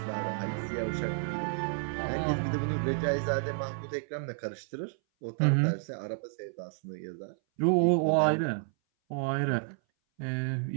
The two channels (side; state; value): left; silent; 57 dB below the other